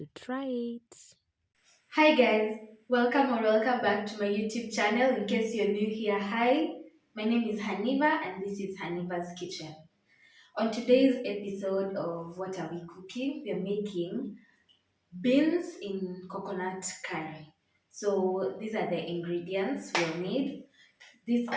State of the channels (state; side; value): identical; both; correlation 1.00